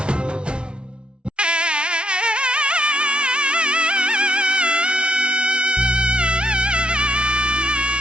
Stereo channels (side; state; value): left; late; 0.057 ms